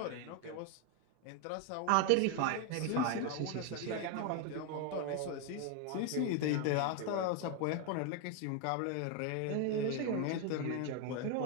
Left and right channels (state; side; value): different; both; correlation 0.01